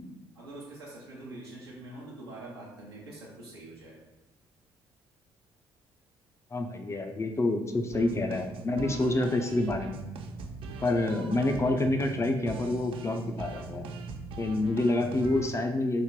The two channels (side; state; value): both; normal; correlation 0.80